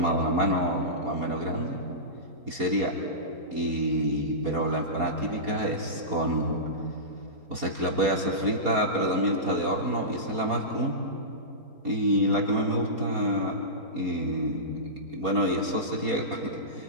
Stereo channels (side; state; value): left; late; 4.2 ms